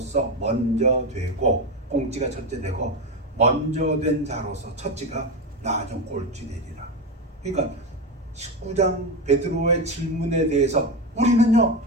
먼저 되고 꽁찌가 첫째 되고 먼저 된 자로서 첫째가 나중 꼴찌 되리라. 그러니까 19장 베드로의 질문에 대해서 우리는요,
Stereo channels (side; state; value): both; normal; correlation 0.15